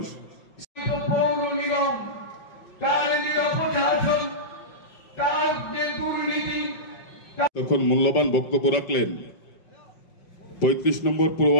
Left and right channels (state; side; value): late; right; 5.5 ms